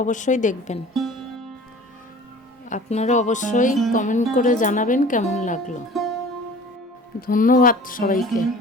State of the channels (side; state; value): both; normal; correlation 0.44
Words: অবশ্যই দেখবেন। আপনারা অবশ্যই কমেন্ট করে জানাবেন কেমন লাগলো। ধন্যবাদ সবাইকে।